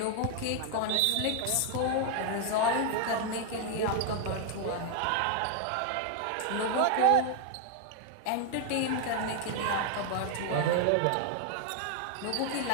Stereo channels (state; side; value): different; both; correlation 0.00